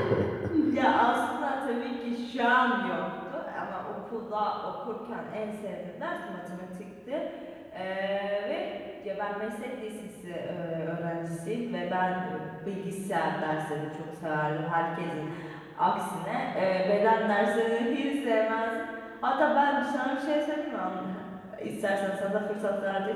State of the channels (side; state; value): both; identical; correlation 1.00